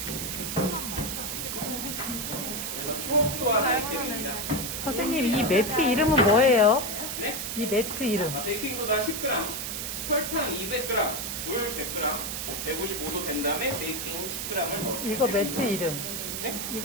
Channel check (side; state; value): right; noise; hiss, 4 dB below the sound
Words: 그래서 초호수와 하기 때문입니다. 선생님, 이 매트 이름은 뭐예요? 네? 이 매트 이름. 베이킹소다 10g, 설탕 200g, 물 100g, 155도 된 다음에 베이킹 10g을 넣어요. 이거 매트 이름. 네?